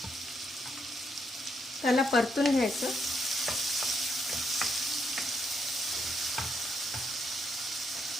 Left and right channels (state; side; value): normal; both; correlation 0.77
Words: त्याला परतून घ्यायचं।